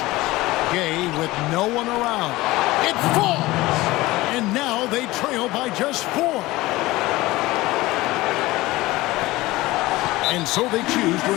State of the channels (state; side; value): quieter; right; 19.1 dB